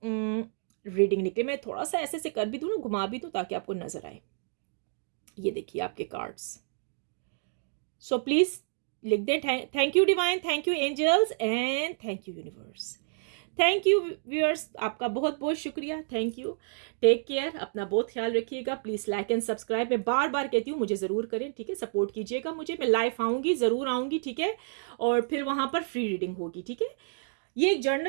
रीडिंग निकले। मैं थोड़ा सा ऐसे से कर भी दूं ना, घुमा भी दूं, ताकि आपको नजर आए। ये देखिए आपके कार्ड्स। सो प्लीज लिख दें, thank you divine, thank you angels, and thank you universe. Thank you viewers, आपका बहुत बहुत शुक्रिया, थैंक यू। टेक केयर, अपना बहुत ख्याल रखिएगा। प्लीज़ लाइक एंड सब्सक्राइब, मैं बार बार कहती हूँ, मुझे ज़रूर करें, ठीक है। सपोर्ट कीजिएगा मुझे, मैं लाइव आऊँगी, ज़रूर आऊँगी, ठीक है। और फिर वहाँ पर फ्री रीडिंग होगी, ठीक है। ये एक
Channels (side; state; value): left; silent; digital silence